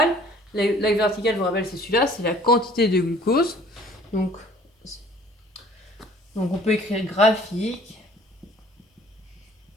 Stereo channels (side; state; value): both; normal; correlation 0.54